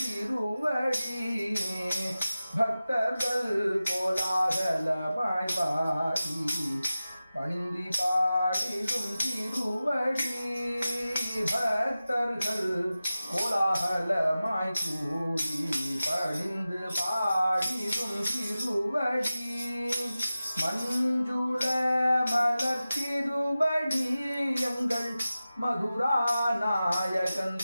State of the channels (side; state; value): both; inverted; correlation -0.95